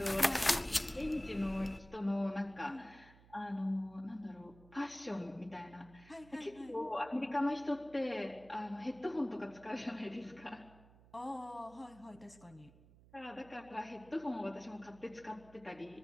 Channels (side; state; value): right; noise; hum, 23 dB below the sound